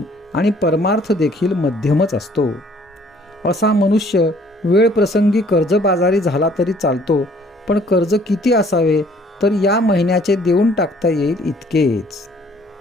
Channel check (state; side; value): normal; both; correlation 0.59